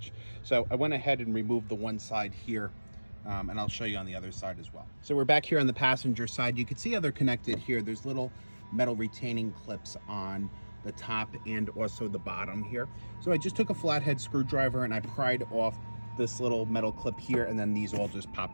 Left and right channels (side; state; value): both; inverted; correlation -1.00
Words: So I went ahead and removed the one side here, and I'll show you on the other side as well. So we're back here on the passenger side. You can see how they're connected here. There's little metal retaining clips on the top and also the bottom here. So I just took a flathead screwdriver and I pried off this little metal clip here, and then these all just